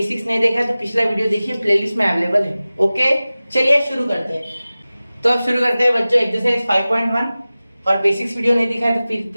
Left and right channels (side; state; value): both; inverted; correlation -0.97